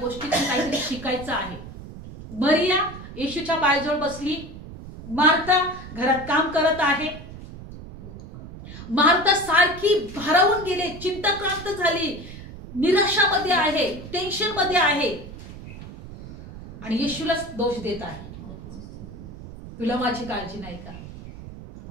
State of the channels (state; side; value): noise; right; rumble, 14 dB below the sound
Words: काहीतरी शिकायचं आहे. मरिया येशूच्या पायाजवळ बसली, मार्था घरात काम करत आहे. मार्था सारखी भारावून गेले, चिंताक्रांत झाली, निराशामध्ये आहे, टेन्शन मध्ये आहे आणि येशूला दोष देत आहे. तुला माझी काळजी नाही का?